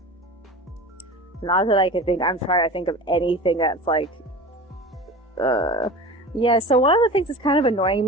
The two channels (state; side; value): normal; both; correlation 0.35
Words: Not that I can think. I'm trying to think of anything that's like yeah, so one of the things that's kind of annoying